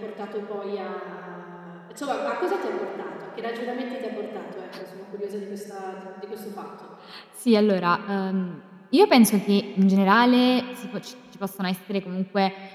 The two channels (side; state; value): both; identical; correlation 1.00